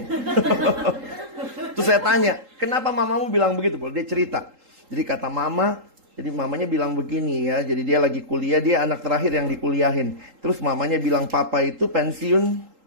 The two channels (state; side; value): late; left; 3.8 ms